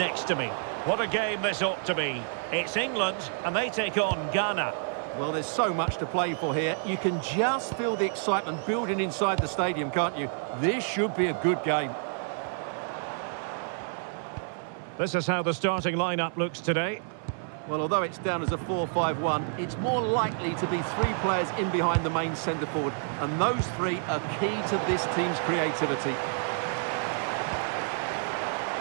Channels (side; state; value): left; silent; 57 dB below the other